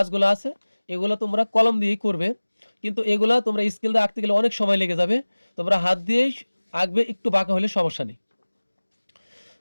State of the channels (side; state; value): both; inverted; correlation -1.00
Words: আছে এগুলো তোমরা কলম দিয়েই করবে, কিন্তু এগুলা তোমরা স্কেল দিয়ে আঁকতে গেলে অনেক সময় লেগে যাবে, তোমরা হাত দিয়েই আঁকবে, একটু বাঁকা হলে সমস্যা নেই।